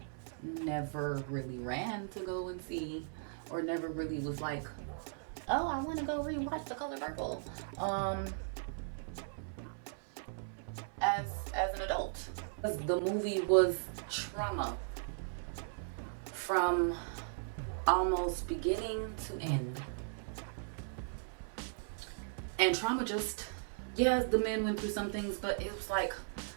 never really ran to go and see, or never really was like, oh, I want to go rewatch The Color Purple as an adult. The movie was trauma from almost beginning to end. And trauma just, yes, the men went through some things, but it was like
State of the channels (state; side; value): silent; left; 53 dB below the other